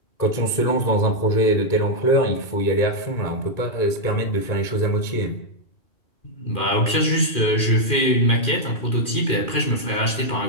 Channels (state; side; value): late; right; 2.4 ms